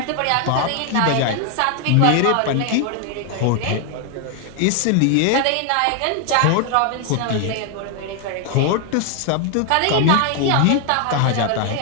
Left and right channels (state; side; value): different; both; correlation 0.00